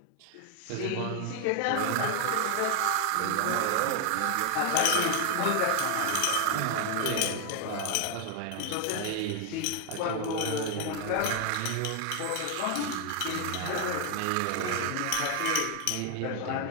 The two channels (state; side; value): different; both; correlation 0.00